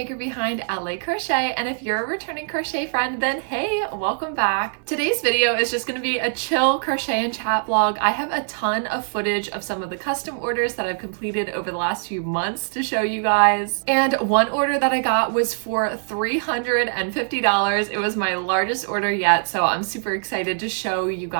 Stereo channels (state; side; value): silent; left; 57 dB below the other